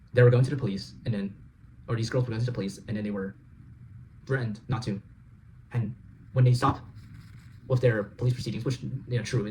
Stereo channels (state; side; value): identical; both; correlation 1.00